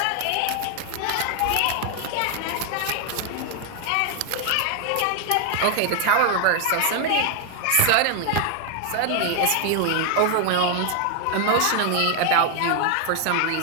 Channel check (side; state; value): both; different; correlation 0.00